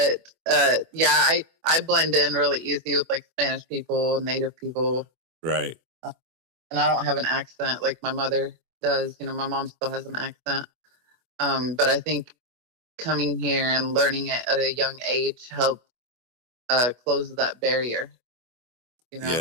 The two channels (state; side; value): late; left; 24 ms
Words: I blend in really easy with Spanish people, Native people. Right. And I don't have an accent like my mother does. My mom still has an accent. But I think coming here and learning it at a young age helped close that barrier.